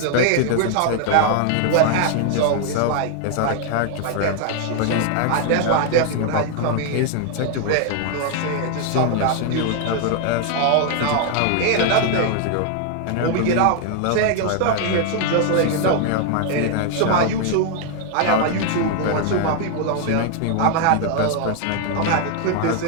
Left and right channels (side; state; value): both; different; correlation 0.00